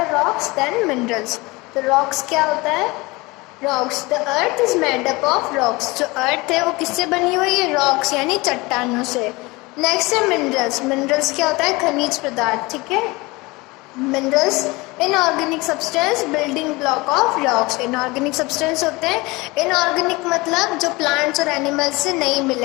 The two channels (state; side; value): quieter; right; 23.4 dB